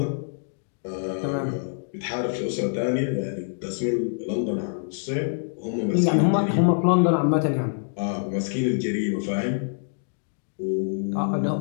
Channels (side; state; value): right; silent; digital silence